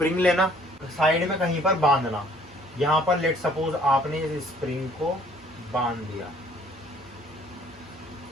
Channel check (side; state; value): both; normal; correlation 0.58